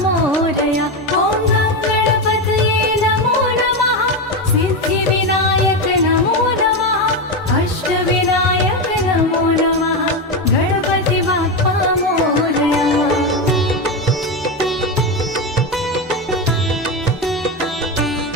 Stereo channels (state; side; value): normal; both; correlation 0.13